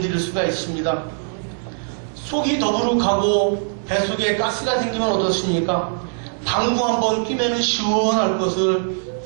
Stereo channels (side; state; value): left; silent; digital silence